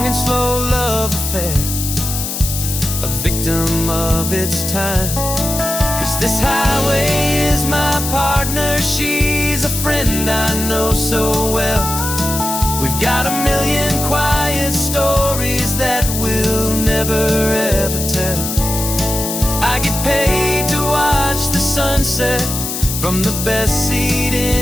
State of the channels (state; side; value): noise; left; hiss, 4 dB below the sound